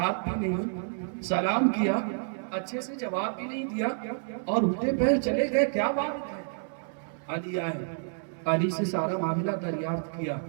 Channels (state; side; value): silent; left; digital silence